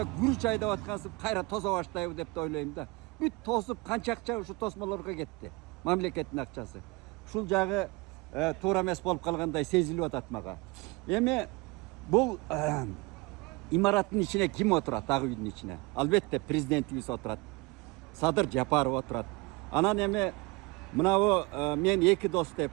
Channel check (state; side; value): quieter; left; 25.4 dB